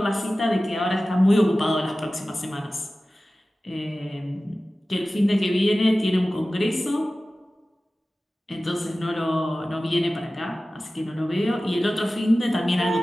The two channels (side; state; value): both; normal; correlation 0.96